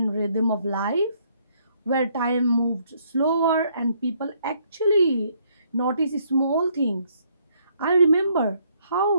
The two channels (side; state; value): both; inverted; correlation -0.69